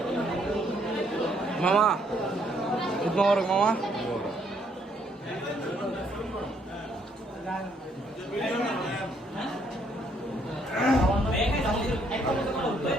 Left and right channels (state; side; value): normal; both; correlation 0.69